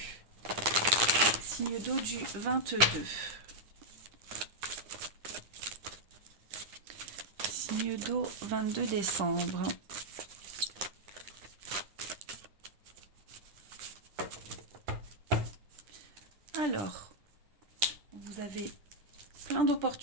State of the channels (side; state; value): left; late; 9.9 ms